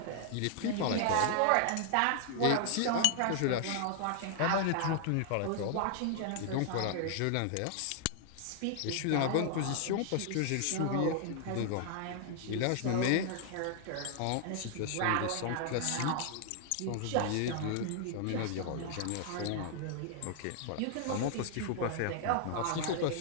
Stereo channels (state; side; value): different; both; correlation 0.00